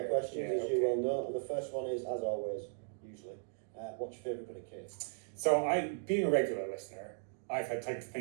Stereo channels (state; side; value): silent; left; digital silence